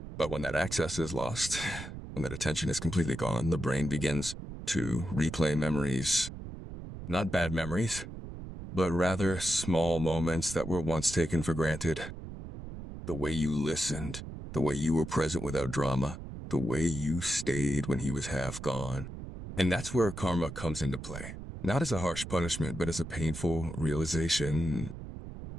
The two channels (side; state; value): right; noise; rumble, 10 dB below the sound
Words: But when that access is lost, when that attention is completely gone, the brain begins to replay memories. Not bad memories, but rather small moments that were once taken for granted. The way you listened, the way you were present without drama, the way you stayed when he was half gone. And that's where karma comes into play. Not as a harsh punishment, but as a painful realization.